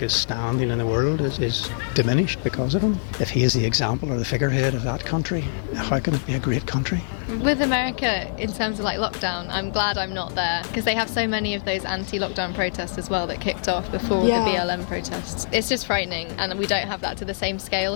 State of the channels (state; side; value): silent; right; digital silence